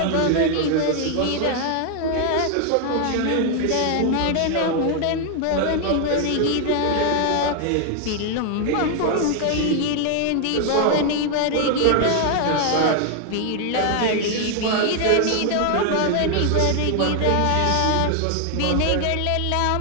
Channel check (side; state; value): both; different; correlation 0.00